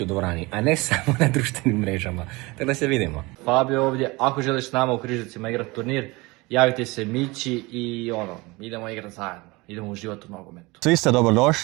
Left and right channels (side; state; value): left; quieter; 23.7 dB